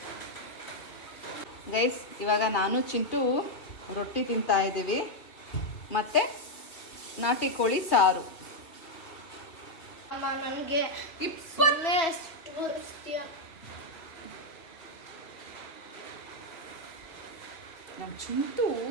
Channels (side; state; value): right; late; 2.7 ms